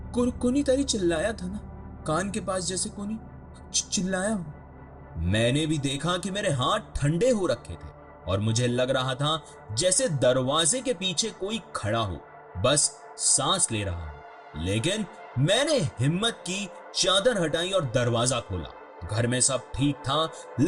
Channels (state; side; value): identical; both; correlation 1.00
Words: तारी चिल्लाया था ना, कान के पास जैसे कोनी चिल्लाया हो। मैंने भी देखा कि मेरे हाथ ठंडे हो रखे थे और मुझे लग रहा था जैसे दरवाजे के पीछे कोई खड़ा हो, बस सांस ले रहा हो। लेकिन मैंने हिम्मत की, चादर हटाई और दरवाजा खोला। घर में सब ठीक था,